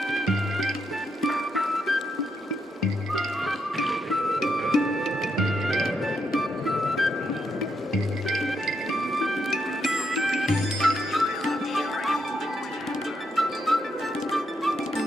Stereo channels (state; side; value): normal; both; correlation 0.80